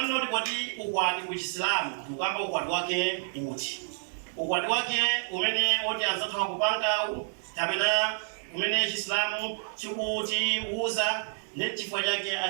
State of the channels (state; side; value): silent; left; digital silence